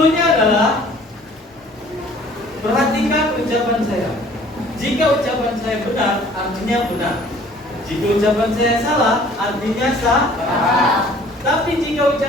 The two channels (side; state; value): both; normal; correlation 0.53